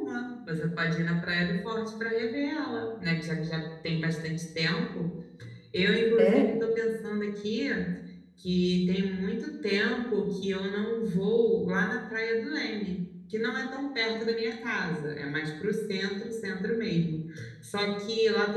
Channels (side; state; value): both; identical; correlation 1.00